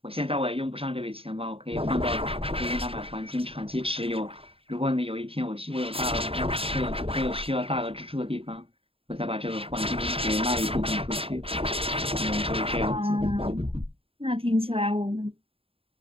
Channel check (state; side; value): late; left; 0.27 ms